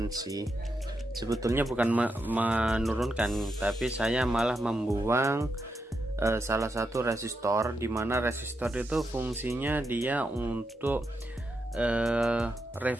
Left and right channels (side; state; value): both; normal; correlation 0.84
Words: Sebetulnya bukan menurunkan, tapi saya malah membuang salah satu resistor, di mana resistor itu fungsinya dia untuk